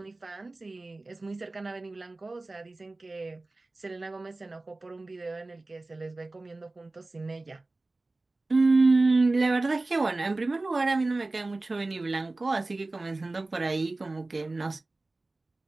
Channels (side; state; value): left; quieter; 3.1 dB